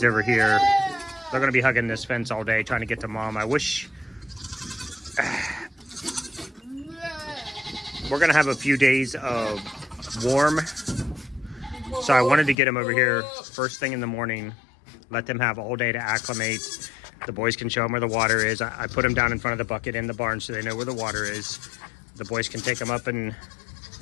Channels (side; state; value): right; drops out; at 12.6 s